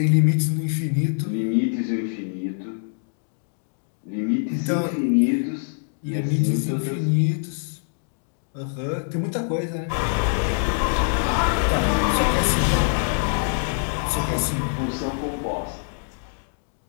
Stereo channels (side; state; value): right; silent; 61 dB below the other